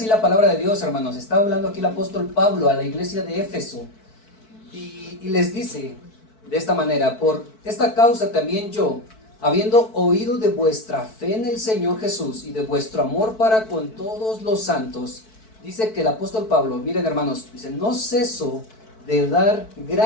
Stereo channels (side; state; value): right; late; 4.6 ms